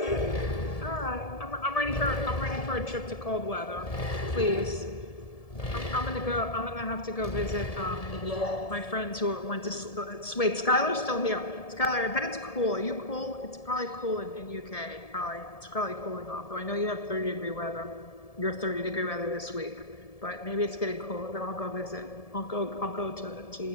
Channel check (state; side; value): late; right; 1.7 ms